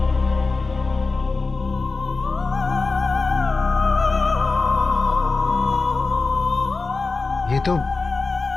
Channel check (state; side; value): quieter; right; 3.9 dB